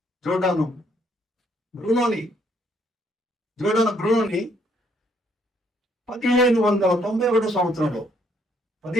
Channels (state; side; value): normal; both; correlation 0.68